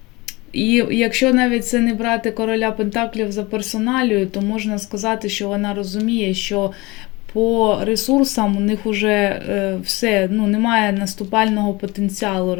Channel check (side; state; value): right; quieter; 23.2 dB